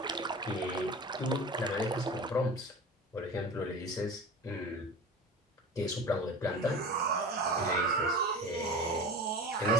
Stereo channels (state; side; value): normal; both; correlation 0.34